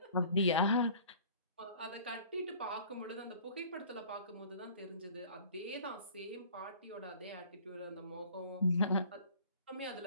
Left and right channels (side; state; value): both; inverted; correlation -0.49